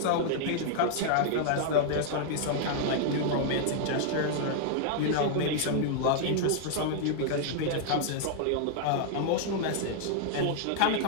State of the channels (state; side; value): different; both; correlation -0.01